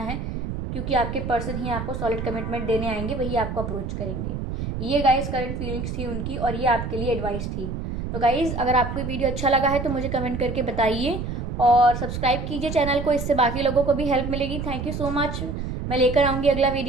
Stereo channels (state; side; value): noise; right; rumble, 5 dB below the sound